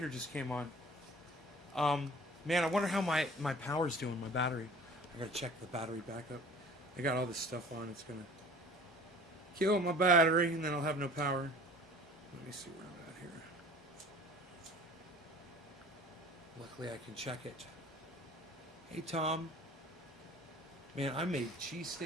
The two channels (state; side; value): normal; both; correlation 0.47